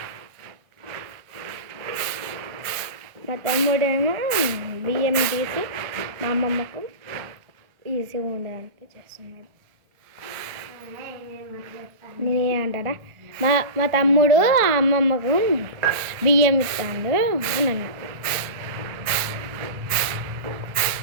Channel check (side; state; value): left; late; 1.4 ms